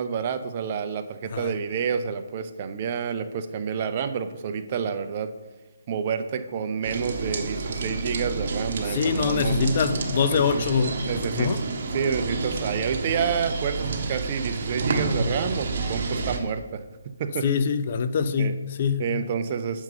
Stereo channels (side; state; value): both; inverted; correlation -0.63